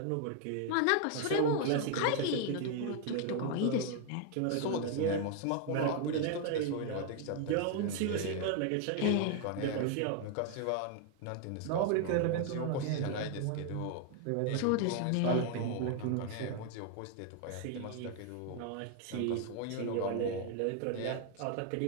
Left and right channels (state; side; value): different; both; correlation 0.00